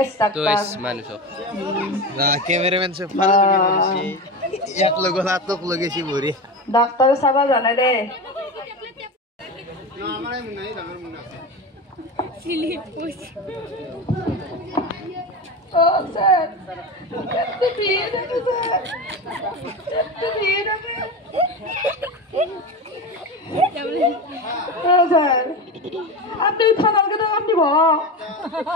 তো ডাক্তার মানুষ না ক্যামেরাম্যান সে ফালা করেছি এক লগ হাতক লগেছি ভরি ডাক্তার সাবা জানে রে না আমারে নাই আমার মনে আছে সিলিপ পুষ Oh, sir. Kette biye de sir. Kette biye de. Oh, sir. Apni থানার কে আপনি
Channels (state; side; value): normal; both; correlation 0.23